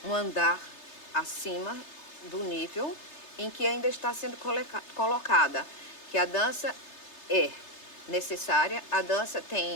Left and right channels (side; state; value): right; late; 3.3 ms